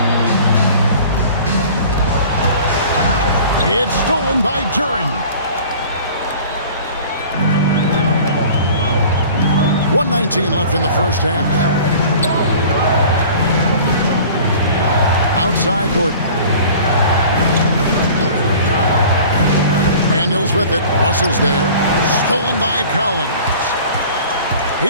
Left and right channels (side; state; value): both; inverted; correlation -0.45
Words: It's stolen by Duren. 1:19 left in the first half. Outside Gordon. Daniels with it. Russell's there. Stolen by Collins.